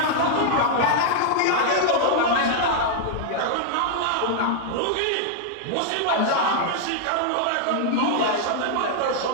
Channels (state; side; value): different; both; correlation -0.01